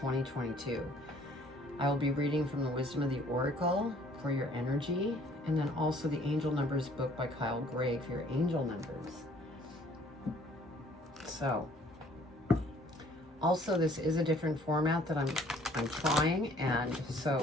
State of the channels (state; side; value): normal; both; correlation 0.57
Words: I will be reading from the Wisdom of the Oracle for your energy, and then also the Angel Numbers book by Kyle Gray for your angel numbers. So, also this is a different format that I'm trying, and